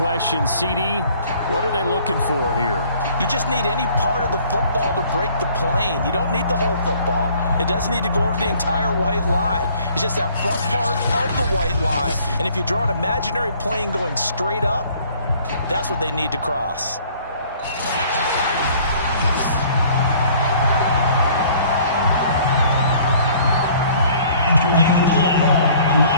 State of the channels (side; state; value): both; inverted; correlation -0.56